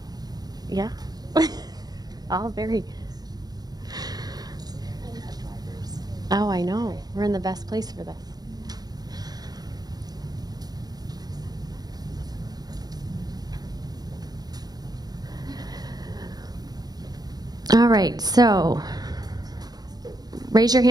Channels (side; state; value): left; late; 0.19 ms